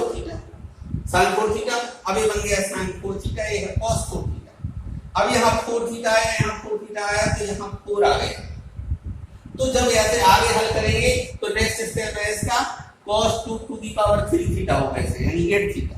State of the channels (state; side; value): identical; both; correlation 1.00